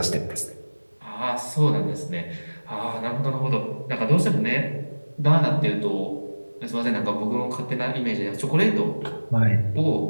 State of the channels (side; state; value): both; inverted; correlation -1.00